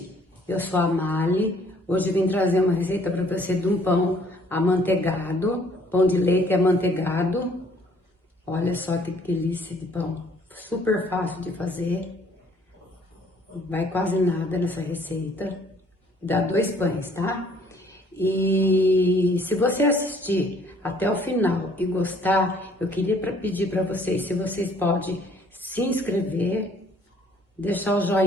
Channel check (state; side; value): normal; both; correlation 0.60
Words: eu sou a Mali. Hoje eu vim trazer uma receita para você de um pão amanteigado, pão de leite amanteigado. Olha só que delícia de pão, super fácil de fazer, vai quase nada nessa receita. Dá 2 pães, tá? E se você assistir até o final e gostar, eu queria pedir para vocês, se vocês podem se inscrever, deixar o